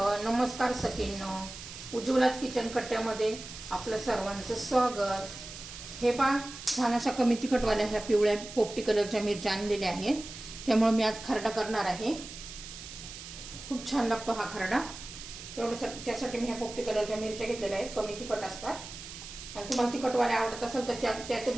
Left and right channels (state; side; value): noise; right; hiss, 12 dB below the sound